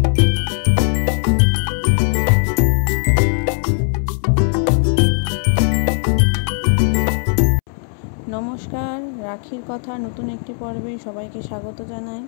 রাখির কথা নতুন একটি পর্বে সবাইকে স্বাগত জানাই।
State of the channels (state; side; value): silent; right; 67 dB below the other